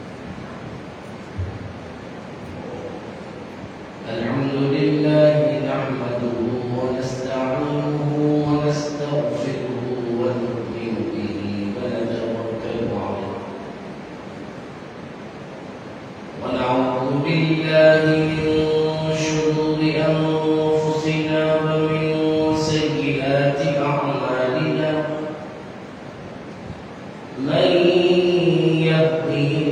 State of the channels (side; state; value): both; identical; correlation 1.00